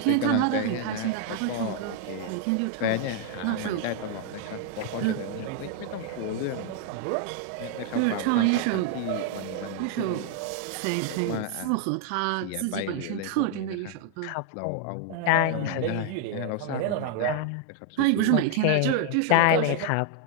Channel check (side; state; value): both; different; correlation 0.00